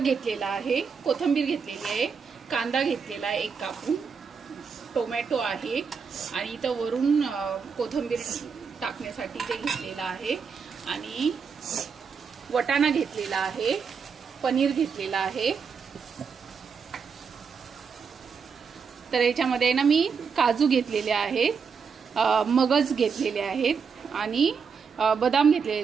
घेतलेला आहे, कोथिंबीर घेतलेली आहे, कांदा घेतलेला आहे एक कापून, टोमॅटो आहे आणि इथं वरून कोथिंबीर टाकण्यासाठी ते घेतलेला आहे आणि वटाणा घेतलेला आहे, पनीर घेतलेला आहे। तर याच्यामध्ये ना मी काजू घेतलेले आहेत, मगज घेतलेले आहेत आणि बदाम घेतलेले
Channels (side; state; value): left; quieter; 6.0 dB